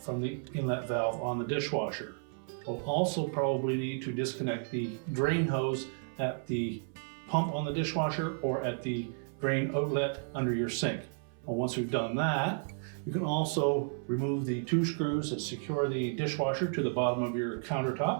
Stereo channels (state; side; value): silent; left; 56 dB below the other